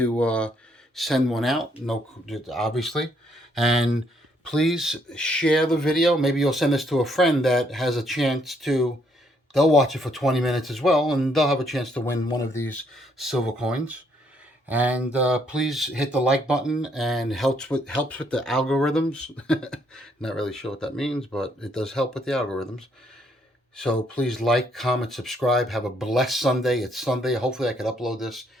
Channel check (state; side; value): normal; both; correlation 0.70